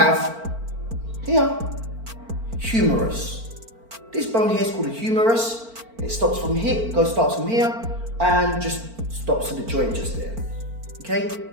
here, humerus. This bone here is called a humerus. It starts from here and just stops at the joint just there. Okay,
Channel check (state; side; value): late; left; 4.4 ms